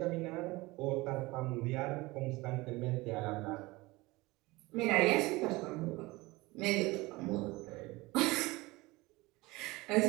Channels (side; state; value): left; quieter; 21.7 dB